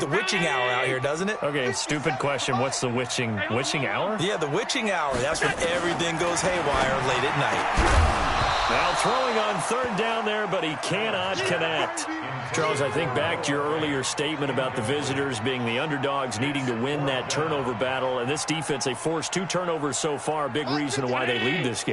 witching hour out here, doesn't it? Okay, stupid question. What's the witching hour? Yeah, the witching hour. That's when everything goes haywire late at night. Now throwing on third down there, but he cannot connect. Charles, I think back to your earlier statement about the visitors being the underdogs needing to win that turnover battle. And this defense, they forced 2 turnovers so far, a big reason why they lead this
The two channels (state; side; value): identical; both; correlation 1.00